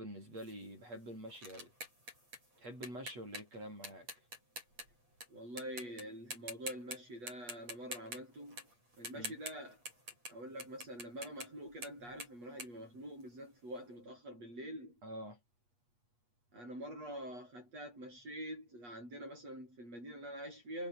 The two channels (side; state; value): left; late; 8.3 ms